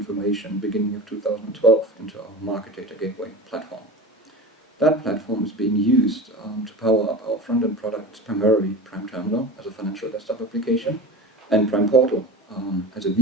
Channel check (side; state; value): both; normal; correlation 0.31